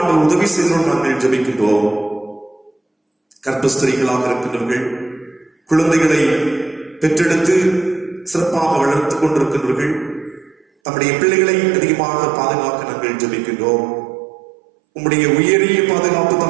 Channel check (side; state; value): left; drops out; at 10.7 s